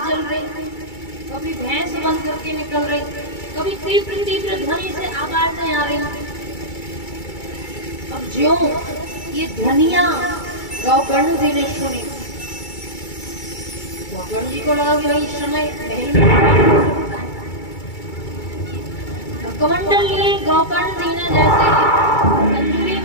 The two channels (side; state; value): right; late; 2.3 ms